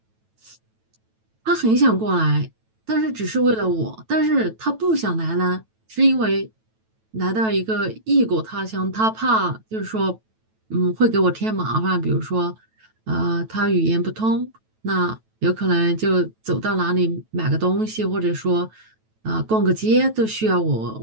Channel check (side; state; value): left; late; 9.1 ms